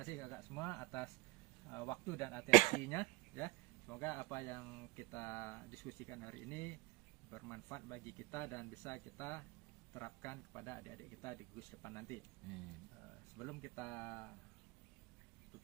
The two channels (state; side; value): quieter; left; 23.6 dB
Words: kakak semua atas waktu dan atensinya ya. Semoga apa yang kita diskusikan hari ini bermanfaat bagi kita dan bisa kita terapkan kepada adik-adik kita di gugus depan nanti. Sebelum kita